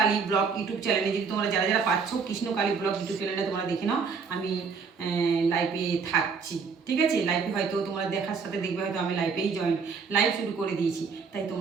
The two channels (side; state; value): left; quieter; 5.4 dB